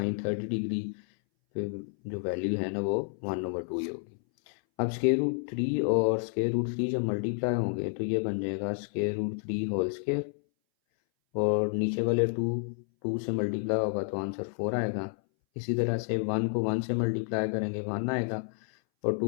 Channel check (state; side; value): silent; right; 58 dB below the other